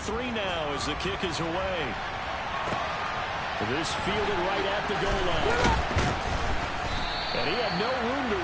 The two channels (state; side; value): identical; both; correlation 1.00